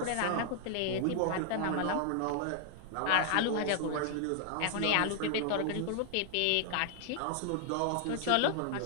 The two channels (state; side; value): different; both; correlation 0.00